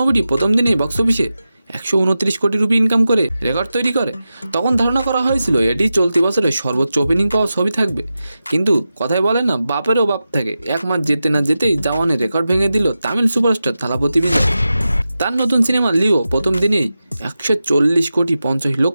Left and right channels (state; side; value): inverted; both; correlation -0.92